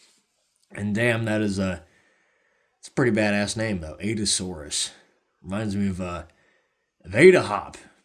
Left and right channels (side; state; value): both; identical; correlation 1.00